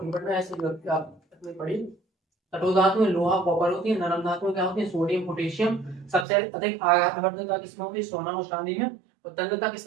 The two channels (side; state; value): left; drops out; at 6.2 s